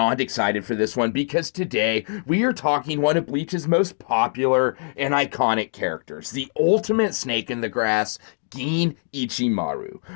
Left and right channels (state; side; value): silent; right; digital silence